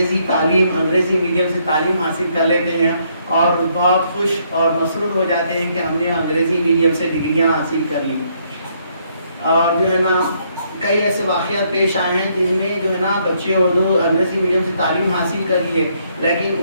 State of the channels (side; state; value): both; inverted; correlation -0.71